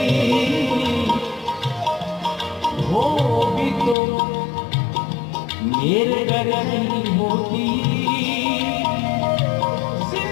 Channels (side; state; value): right; drops out; at 4.0 s